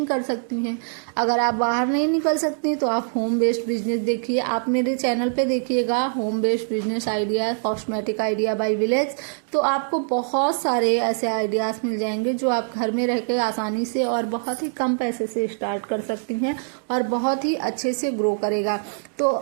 कर सकती हैं। अगर आप बाहर नहीं निकल सकती तो आप होम बेस्ड बिजनेस देखिए। आप मेरे चैनल पे देखिएगा home based business idea, cosmetic idea by village, तो आपको बहुत सारे ऐसे आइडियाज मिल जाएंगे जो आप घर में रह के आसानी से और बहुत ही कम पैसे से स्टार्ट कर सकती हैं और बहुत ही अच्छे से ग्रो करेगा। तो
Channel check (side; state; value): left; silent; digital silence